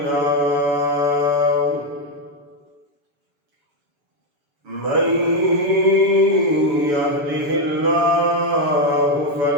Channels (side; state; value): left; late; 7.1 ms